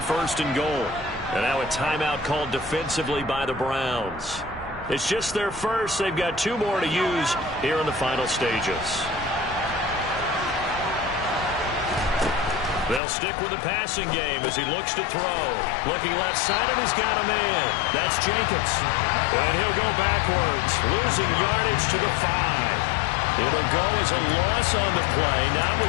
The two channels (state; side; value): drops out; right; at 13.0 s